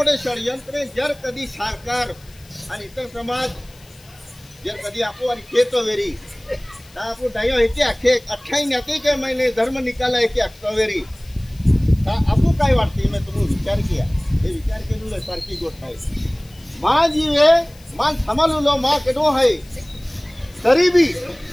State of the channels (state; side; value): noise; left; hiss, 26 dB below the sound